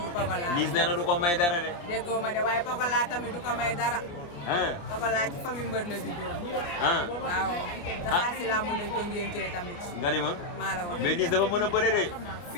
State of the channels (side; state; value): right; late; 29 ms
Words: du Pokola Liss nee na du ko may dara de déggoo ma de waaye Pokola tamit du ko may dara Pokola ci famille mbër la juddoo waaw daxaa si laa mën nañ ko ngéntee tamit nga ni ma maa la wax mais Liss dafa mën a bëre de